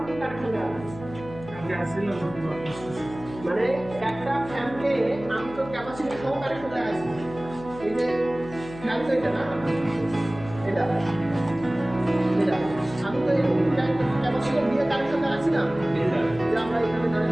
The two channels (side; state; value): left; noise; hum, 15 dB below the sound